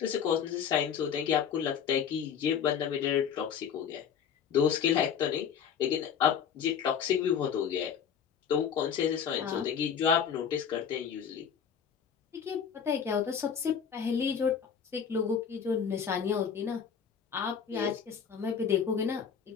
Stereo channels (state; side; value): quieter; right; 7.6 dB